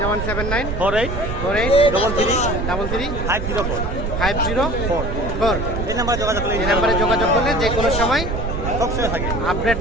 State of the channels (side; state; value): right; noise; rumble, 3 dB below the sound